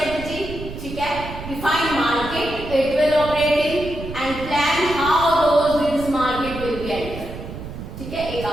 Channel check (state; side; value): noise; right; rumble, 10 dB below the sound